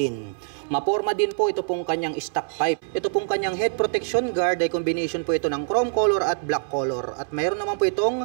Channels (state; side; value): silent; left; 62 dB below the other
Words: Maporma din po ito pong kanyang stock pipe. Ito pong kanyang head protection guard ay combination po ito ng chrome color at black color. At mayroon naman po itong